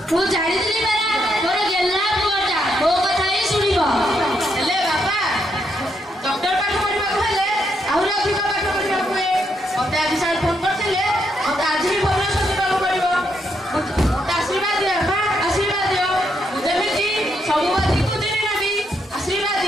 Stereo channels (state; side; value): normal; both; correlation 0.78